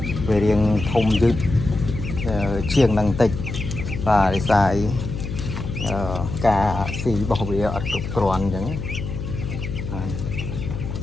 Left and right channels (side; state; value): left; noise; hum, 6 dB below the sound